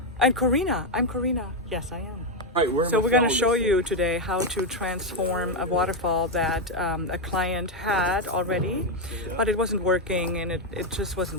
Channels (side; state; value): both; normal; correlation 0.04